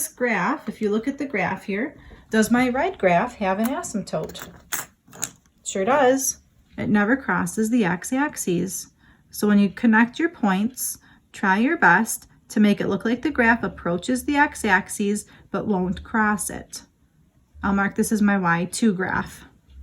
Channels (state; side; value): identical; both; correlation 1.00